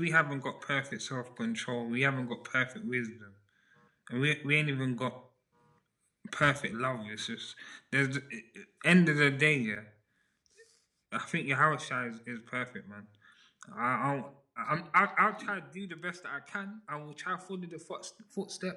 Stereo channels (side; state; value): both; identical; correlation 1.00